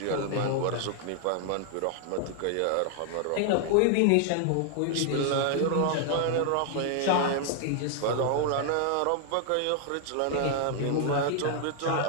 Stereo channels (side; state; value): both; different; correlation 0.00